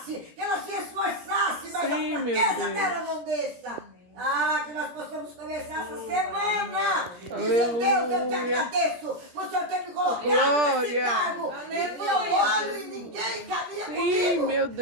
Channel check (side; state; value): left; late; 17 ms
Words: que ela se esforçasse, mas a fraqueza dela não desça. Ah, que nós possamos começar essa semana. Dizendo, Deus, eu te agradeço por o Senhor ter me colocado nesse cargo. E eu olho e ninguém caminha comigo. Meu